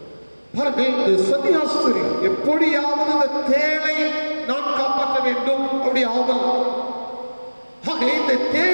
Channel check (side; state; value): both; inverted; correlation -1.00